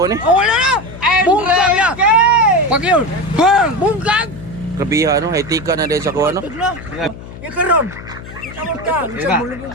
eh. Oh, wala na! Bungkag na! Pag yun, bang! Bungkag! Grabiha no, etika na din sa kuha no. Yung karon, kita mo ka, isa mulubog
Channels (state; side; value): noise; left; hum, 14 dB below the sound